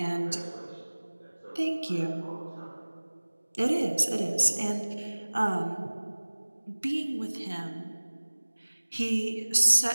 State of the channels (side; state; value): both; inverted; correlation -1.00